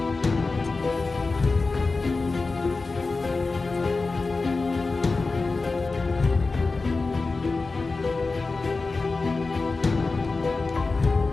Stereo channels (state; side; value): quieter; right; 3.8 dB